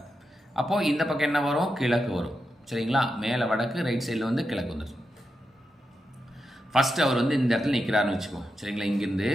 அப்போ இந்த பக்கம் என்ன வரும்? கிழக்கு வரும். சரிங்களா? மேலே வடக்கு, ரைட் சைடில் வந்து கிழக்கு வந்துடும். ஃபர்ஸ்ட் அவர் வந்து இந்த இடத்துல நிற்கிறாருன்னு வச்சுக்கோ. சரிங்களா? இங்கிருந்து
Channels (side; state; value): both; normal; correlation 0.87